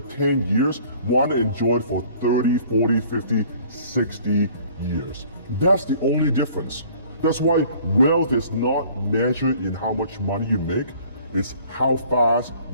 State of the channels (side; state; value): both; inverted; correlation -0.53